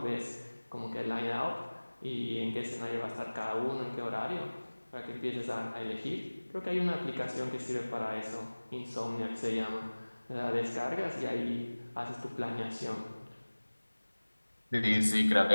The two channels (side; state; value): both; inverted; correlation -1.00